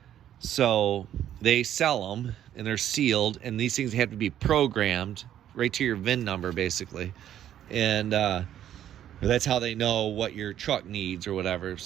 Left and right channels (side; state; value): left; quieter; 11.0 dB